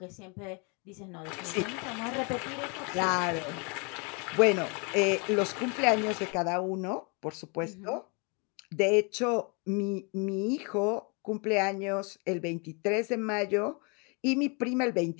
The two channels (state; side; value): quieter; right; 33.0 dB